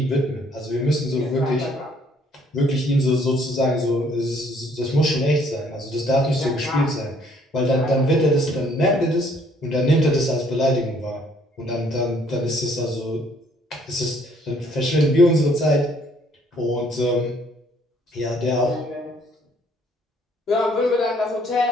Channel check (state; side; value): normal; both; correlation 0.63